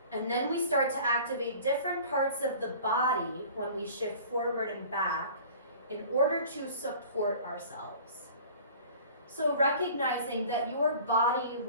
And then we start to activate different parts of the body when we shift forward and back in order to support ourselves. So recognizing that your body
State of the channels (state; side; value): inverted; both; correlation -0.45